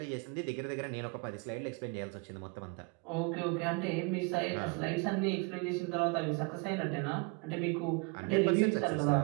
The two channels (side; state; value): left; quieter; 30.4 dB